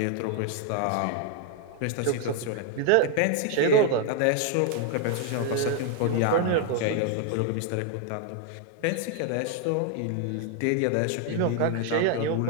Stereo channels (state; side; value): different; both; correlation 0.00